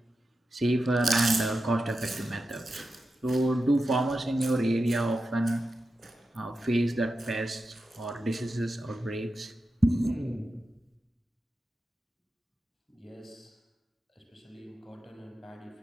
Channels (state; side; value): normal; both; correlation 0.91